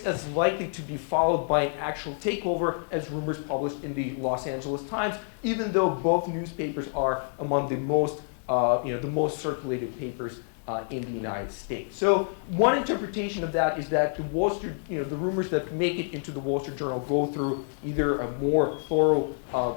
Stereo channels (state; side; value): silent; right; digital silence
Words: as likely to be followed by an actual takeover as rumors published in the Los Angeles Times, even though both newspapers are among the most circulated papers in the United States. So one interpretation of that is that the Wall Street, the rumors that make it into the Wall Street Journal go through either a more thorough